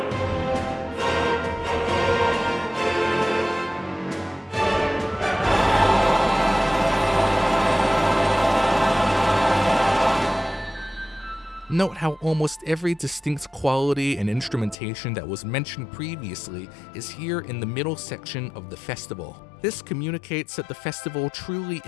Note how almost every distinct quality and instrumentation that was mentioned previously is here in the middle section of the festival. This communicates that the festival truly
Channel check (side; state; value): right; drops out; at 14.8 s